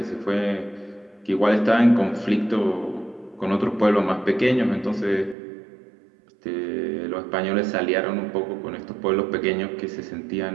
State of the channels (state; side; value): drops out; left; at 5.4 s